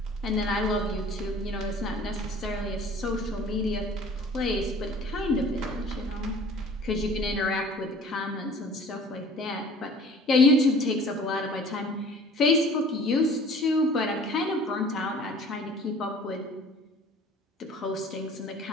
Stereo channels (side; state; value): both; normal; correlation 0.48